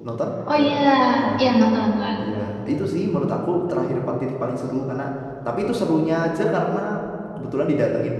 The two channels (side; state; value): both; identical; correlation 1.00